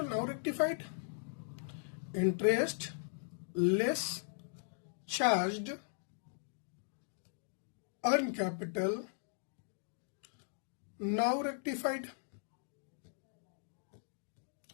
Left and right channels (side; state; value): right; silent; digital silence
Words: now rectified. Interest less charge on capital, now rectified,